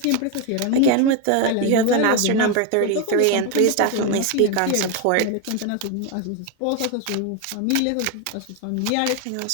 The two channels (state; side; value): different; both; correlation 0.02